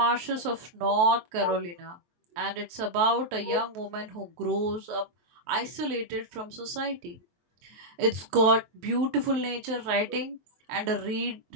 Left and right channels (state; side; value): late; left; 23 ms